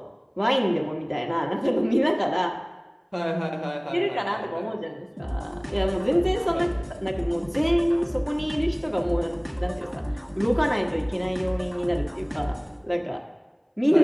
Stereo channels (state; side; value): identical; both; correlation 1.00